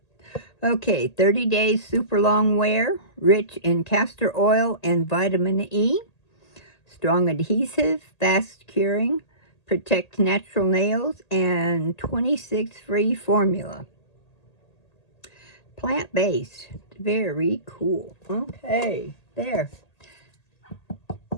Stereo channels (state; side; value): late; right; 1.8 ms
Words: okay, 30 days super long wear, rich in castor oil and vitamin E, strong adhesive, fast curing, protect natural nails, and 26 free formula. Plant-based, very cool. Okay, there.